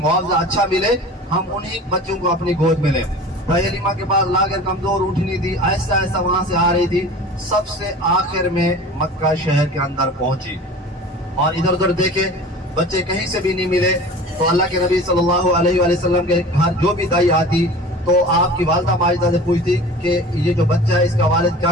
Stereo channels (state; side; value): normal; both; correlation 0.39